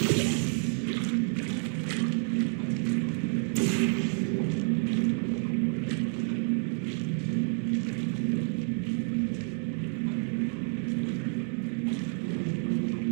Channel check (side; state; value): left; silent; 58 dB below the other